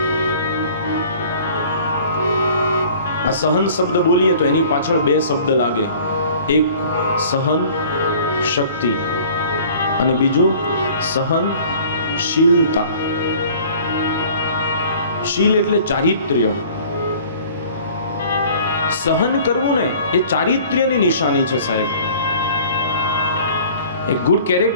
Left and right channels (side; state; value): both; inverted; correlation -0.49